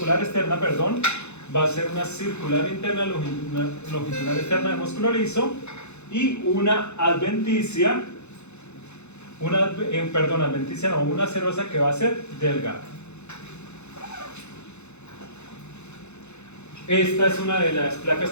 externa, perdón, va a ser una circular interna, longitudinal externa de músculo liso y una adventicia, una serosa que va a ser delgada. Esta es una de las placas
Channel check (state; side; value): late; right; 0.82 ms